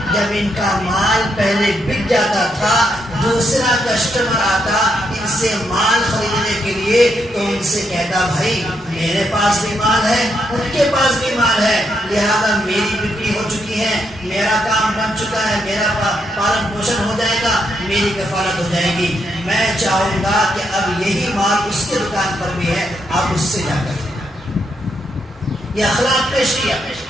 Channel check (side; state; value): both; normal; correlation 0.79